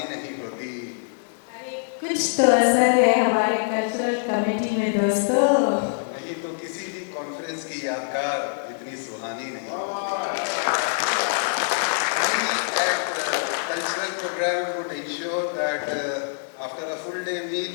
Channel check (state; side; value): silent; right; digital silence